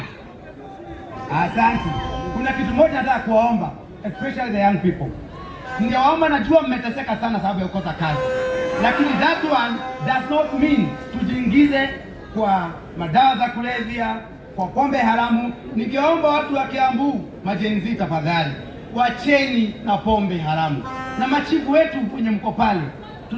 asante. Kuna kitu moja nataka kuwaomba, especially the young people. Ningewaomba, najua mmeteseka sana sababu ya kukosa kazi, lakini that one does not mean tujiingize kwa madawa za kulevya, kwa pombe haramu. Ningeomba watu wa Kiambu, majenzi, tafadhali wacheni na pombe haramu. Na machifu wetu kwenye mko pale,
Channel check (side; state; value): both; identical; correlation 1.00